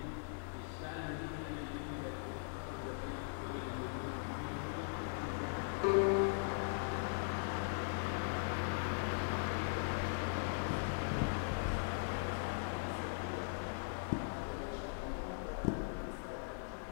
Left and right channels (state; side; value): silent; right; 51 dB below the other